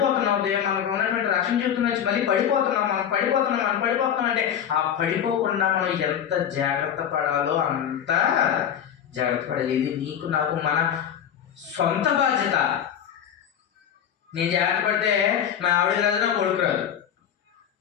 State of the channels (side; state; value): right; quieter; 9.1 dB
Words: మనకు ఉన్నటువంటి రక్షణ జీవితం నుంచి మళ్ళీ మనం పడిపోతున్నాం అంటే ఆ పడిపోకుండా మనం ఎంత జాగ్రత్త పడాలో అంత జాగ్రత్త పడాలి. ఇది నీకు నాకు మన సొంత బాధ్యత. నేను జాగ్రత్త పడితే మా ఆవిడకి రాదు, నా కొడుకు రాదు.